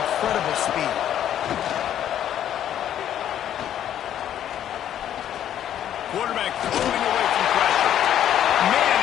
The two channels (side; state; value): right; quieter; 10.6 dB